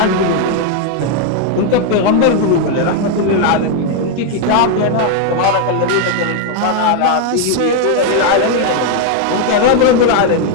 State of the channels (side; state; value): both; different; correlation 0.01